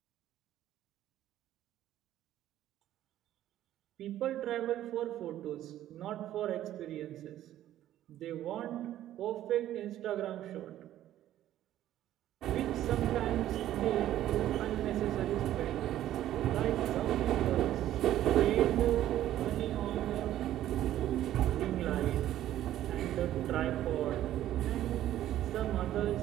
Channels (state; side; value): quieter; left; 12.8 dB